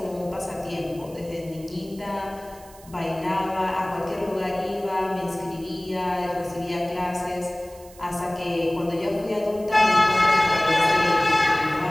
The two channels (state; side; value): noise; right; hiss, 23 dB below the sound